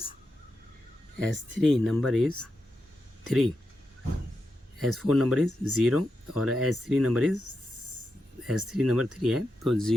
3, S4 number is 0 और S3 नंबर 3 है, तो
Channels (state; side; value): normal; both; correlation 0.88